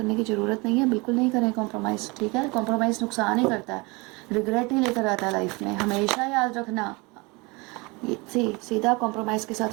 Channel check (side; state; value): left; quieter; 26.5 dB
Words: की ज़रूरत नहीं है बिल्कुल नहीं करें कॉम्प्रोमाइज़, ठीक है। कॉम्प्रोमाइज़ नुकसान ही करता है, रिग्रेट ही लेकर आता है लाइफ में, हमेशा याद रखना। ये सीधा कॉम्प्रोमाइज़ के साथ